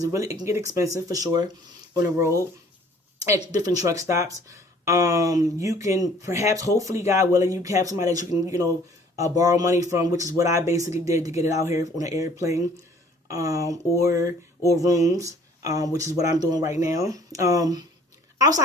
it can get expensive for sure on the road at different truck stops. You can perhaps, hopefully, God willing, you have somebody that you can, borrow money from, which is what I basically did to get it out here on an airplane, or rooms, which is what I'm doing right now.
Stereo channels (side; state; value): both; normal; correlation 0.55